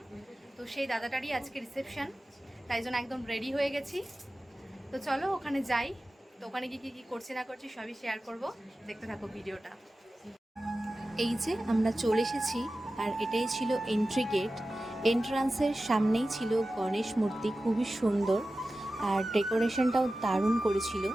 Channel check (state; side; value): normal; both; correlation 0.95